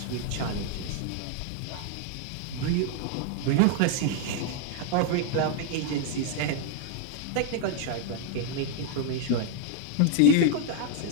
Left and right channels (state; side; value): different; both; correlation 0.00